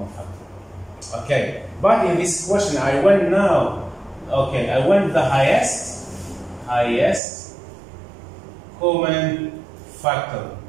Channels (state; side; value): drops out; left; at 7.2 s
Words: factor. Okay, but in this question I went now, okay, I went the highest common factor